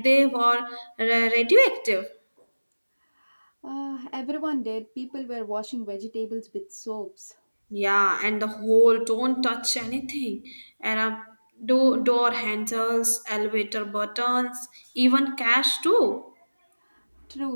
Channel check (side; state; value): both; inverted; correlation -1.00